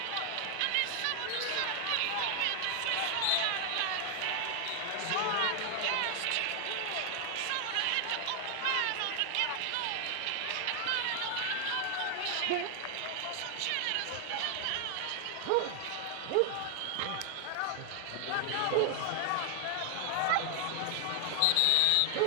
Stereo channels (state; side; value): different; both; correlation 0.00